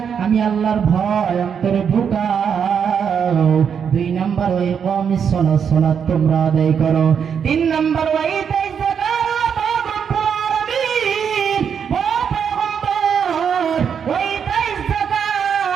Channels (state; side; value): quieter; left; 7.3 dB